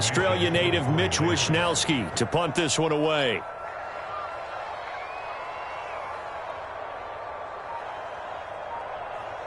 native Mitch Wishnowsky to punt this one away.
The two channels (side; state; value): both; identical; correlation 1.00